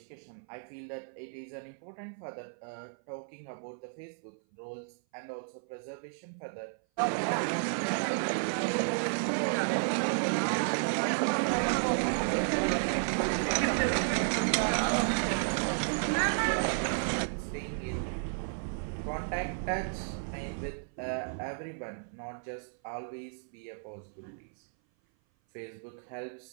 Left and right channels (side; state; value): left; silent; 56 dB below the other